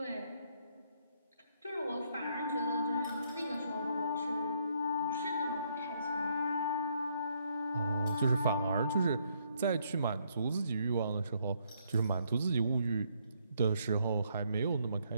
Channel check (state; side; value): inverted; both; correlation -0.71